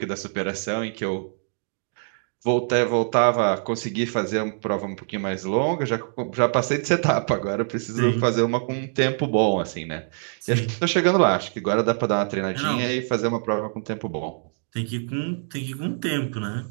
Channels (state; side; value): silent; left; digital silence